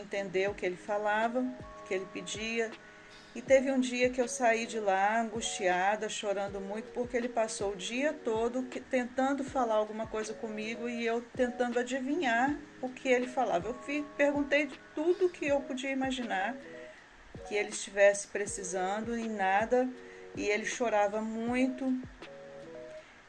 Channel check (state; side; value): identical; both; correlation 1.00